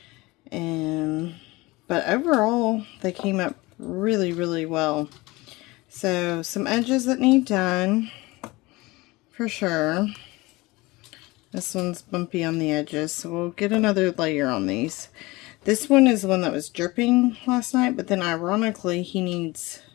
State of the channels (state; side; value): quieter; right; 22.0 dB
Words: but overall they came up really well. So some edges that need done for sure. This one's bumpy on the edges, so we'll get another layer on these. This one is the one that was dripping last night, but then ironically he needs